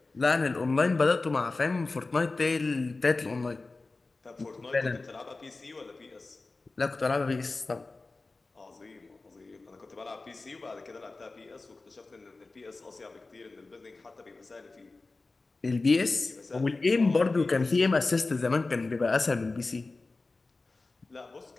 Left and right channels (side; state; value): right; quieter; 3.5 dB